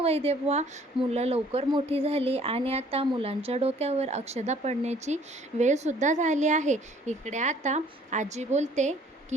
मुलं लवकर मोठी झाली आणि आता मुलांच्या डोक्यावर अक्षदा पडण्याची वेळसुद्धा झाली आहे. इकडे आता आजी बोलते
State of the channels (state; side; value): normal; both; correlation 0.57